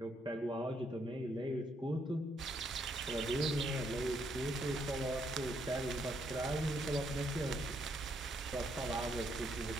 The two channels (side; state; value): both; normal; correlation 0.74